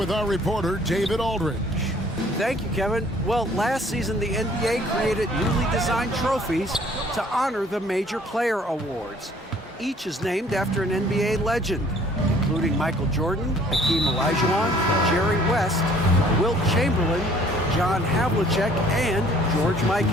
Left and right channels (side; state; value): both; normal; correlation 0.57